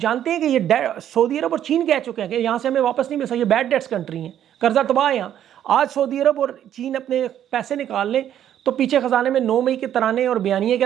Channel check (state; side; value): quieter; left; 10.6 dB